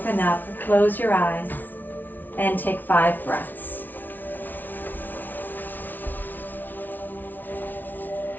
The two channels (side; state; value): right; late; 0.085 ms